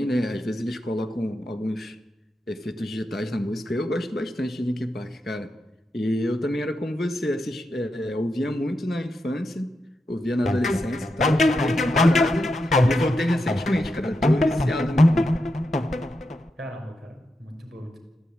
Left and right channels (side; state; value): both; normal; correlation 0.86